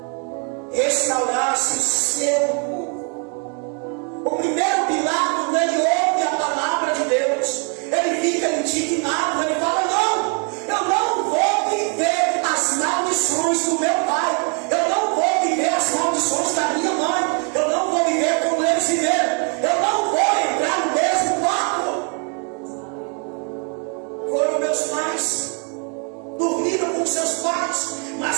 restaurasse o seu povo. O primeiro pilar, quando ele ouve a palavra de Deus, ele fica indignado, ele fala: não, eu não vou viver as maldições do meu pai, eu não vou viver as maldições da minha mãe, eu não vou viver como eles viveram, eu não vou entrar no mesmo barco. Foram meus pais, dormiram com seus pais, mas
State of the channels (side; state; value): left; quieter; 38.7 dB